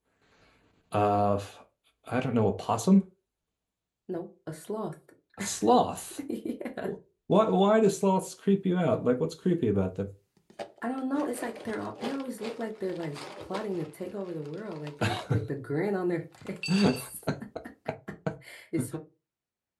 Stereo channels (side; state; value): both; identical; correlation 1.00